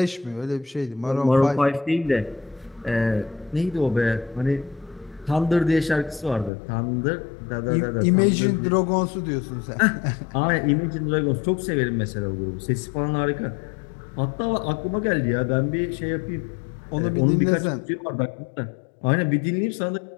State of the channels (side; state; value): right; drops out; at 6.5 s